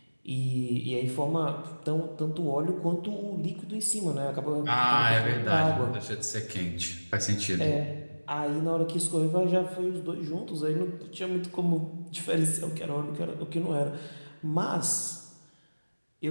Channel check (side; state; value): both; inverted; correlation -1.00